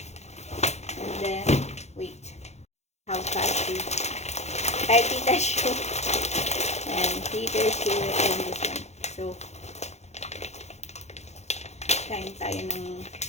then, wait. How fast is ay, tita shoe. And tita shoe and this one. So, kain tayo ng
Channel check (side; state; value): right; late; 0.32 ms